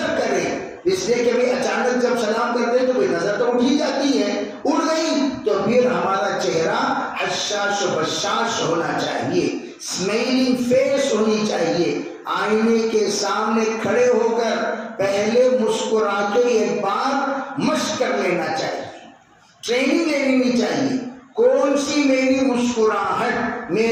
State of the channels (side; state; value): both; identical; correlation 1.00